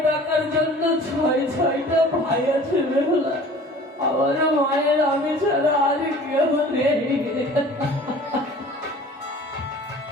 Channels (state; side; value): normal; both; correlation 0.46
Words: ডাকার জন্য ছয়টা ভাই আছে বেহুলা। আমার মায়ের আমি ছাড়া আর কেউ নেই।